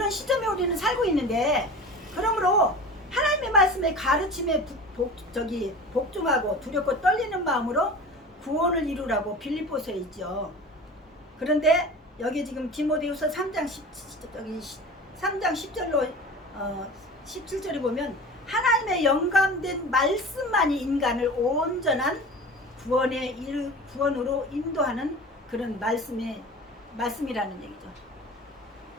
시점에 우리는 살고 있는데, 그러므로 하나님의 말씀에 가르침에 복종하고 두렵고 떨리는 마음으로 구원을 이루라고 빌립보서에 있죠. 그런데 여기 지금 디모데후서 3장 10절로 17절에 보면 하나님의 영감된 말씀만이 인간을 온전한 구원으로 인도하는 그런 말씀이라는 얘기죠.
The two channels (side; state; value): both; normal; correlation 0.36